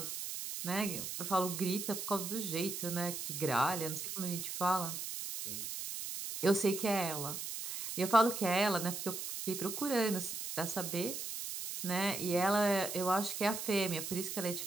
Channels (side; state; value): right; noise; hiss, 5 dB below the sound